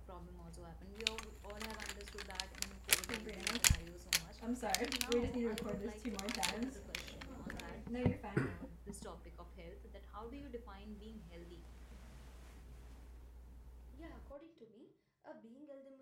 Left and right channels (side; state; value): both; identical; correlation 1.00